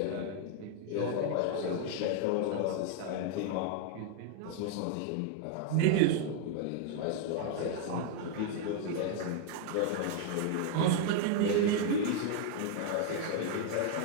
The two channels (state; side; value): different; both; correlation 0.00